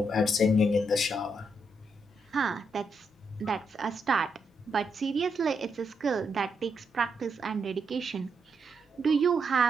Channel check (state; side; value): normal; both; correlation 0.80